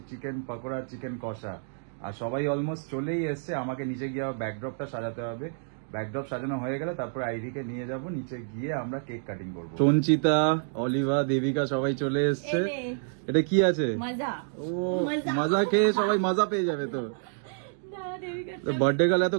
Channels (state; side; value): silent; left; digital silence